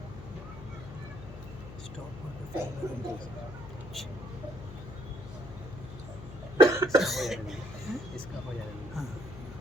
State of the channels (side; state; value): left; noise; hum, 12 dB below the sound